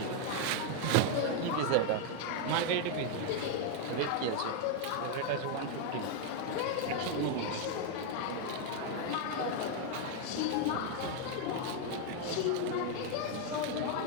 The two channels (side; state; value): both; different; correlation 0.01